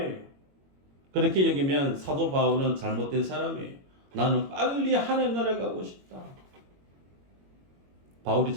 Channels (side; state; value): left; late; 22 ms